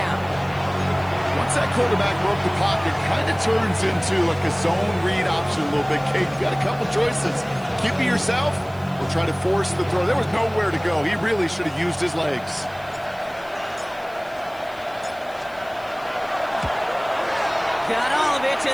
Once that quarterback broke the pocket, kind of turns into like a zone read option a little bit. Kate, you got a couple choices. Keep it yourself or try to force the throw. There was nowhere to go. He really should have used his legs. Got all of it,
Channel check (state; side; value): noise; right; hiss, 26 dB below the sound